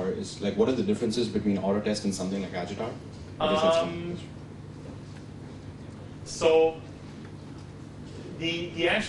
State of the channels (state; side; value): identical; both; correlation 1.00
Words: what are the differences between AutoTest and something like Agitar? So the